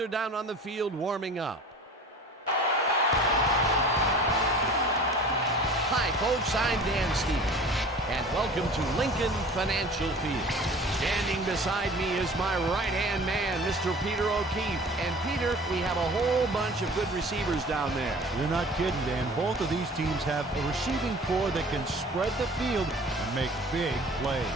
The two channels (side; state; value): both; normal; correlation 0.44